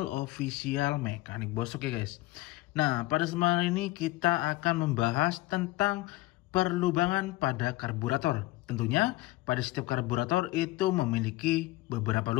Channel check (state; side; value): quieter; right; 18.8 dB